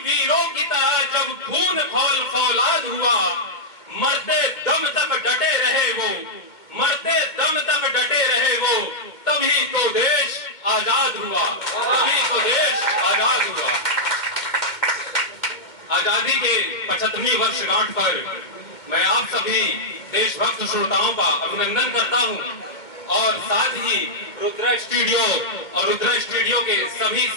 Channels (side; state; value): right; late; 2.2 ms